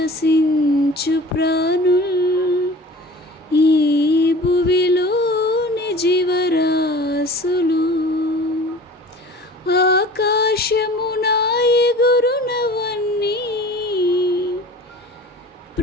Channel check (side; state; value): both; normal; correlation 0.42